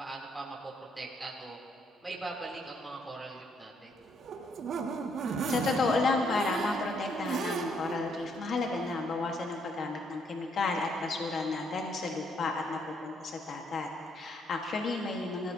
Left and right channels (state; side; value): normal; both; correlation 0.71